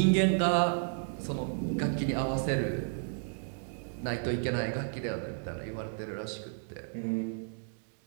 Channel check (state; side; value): silent; left; digital silence